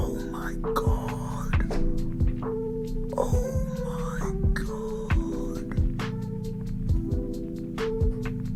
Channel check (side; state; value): both; identical; correlation 1.00